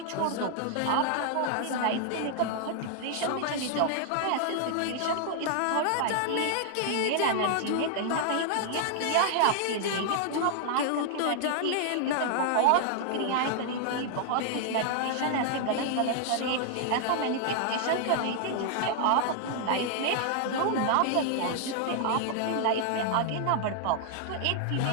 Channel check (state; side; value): different; both; correlation 0.00